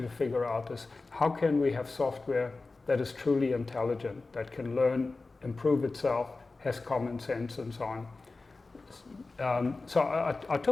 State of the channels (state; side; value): quieter; right; 3.6 dB